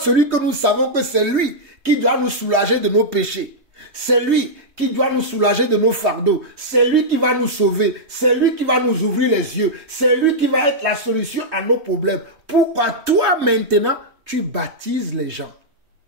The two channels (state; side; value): late; left; 3.3 ms